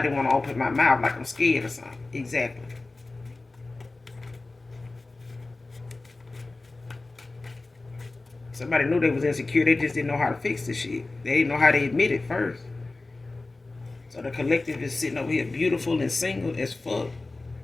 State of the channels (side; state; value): right; quieter; 3.3 dB